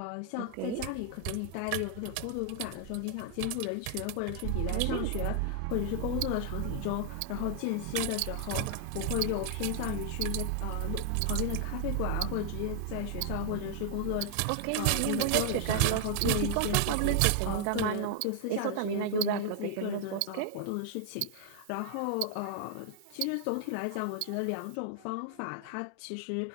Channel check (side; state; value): both; different; correlation 0.00